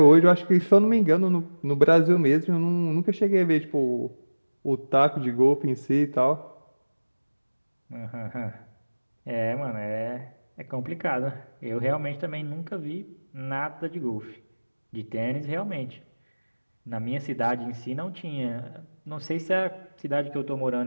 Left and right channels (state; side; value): inverted; both; correlation -1.00